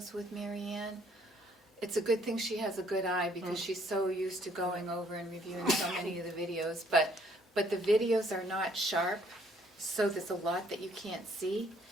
with Mary Ann. It's a good thing she has a good eye because she's so used to going over and reviewing so many of the videos, but the videos are not sharp, so there's a lot that you can't see,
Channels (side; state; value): both; normal; correlation 0.64